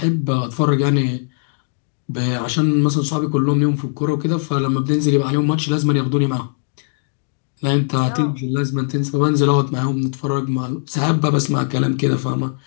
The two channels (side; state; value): right; silent; digital silence